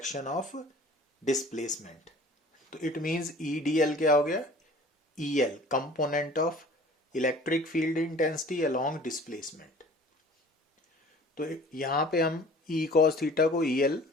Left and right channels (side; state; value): both; normal; correlation 0.47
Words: of displacement. तो it means E D L क्या हो गया, E L component of electric field intensity along displacement. तो यहाँ पे हम ई कॉस थीटा को ई एल